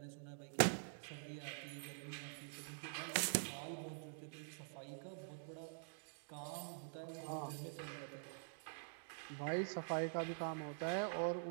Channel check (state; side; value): silent; left; digital silence